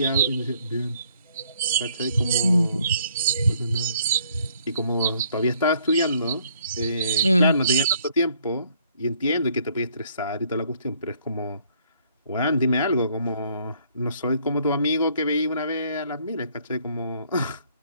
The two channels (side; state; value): both; inverted; correlation -0.65